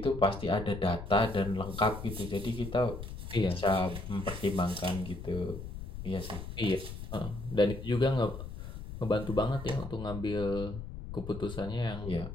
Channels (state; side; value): noise; left; rumble, 9 dB below the sound